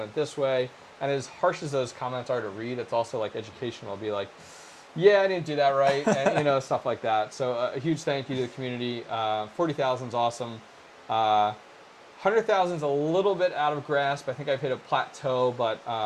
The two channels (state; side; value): identical; both; correlation 1.00